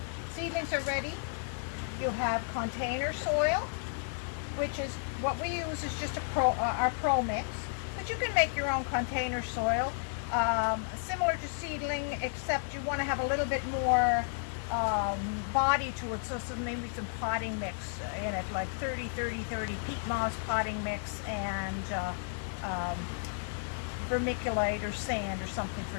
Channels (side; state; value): right; silent; 56 dB below the other